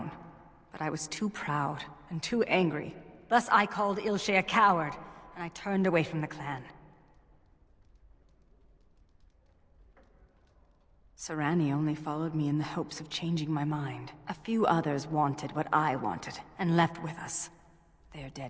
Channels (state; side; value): identical; both; correlation 1.00